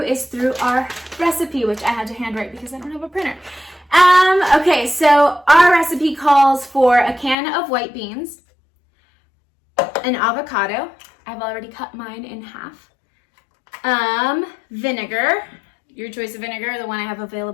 is through our recipe, which I had to handwrite because I don't have a printer. Okay, so our recipe calls for a can of white beans, an avocado. I've already cut mine in half. Vinegar. Your choice of vinegar. The one I have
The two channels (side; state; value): right; drops out; at 7.4 s